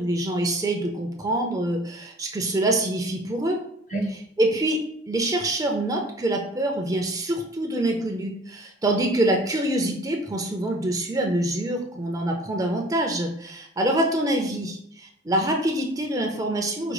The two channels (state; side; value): normal; both; correlation 0.47